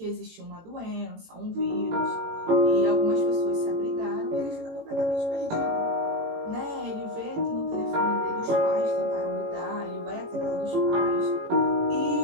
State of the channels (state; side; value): late; left; 18 ms